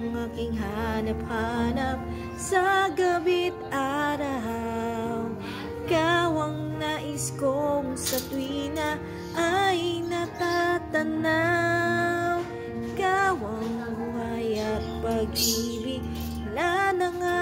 aking hanap-hanap sa gabi't araw. Ikaw ang nais kong sa tuwina ay natatanaw. Ikaw ang buhay at pag-ibig, wala na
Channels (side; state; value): both; identical; correlation 1.00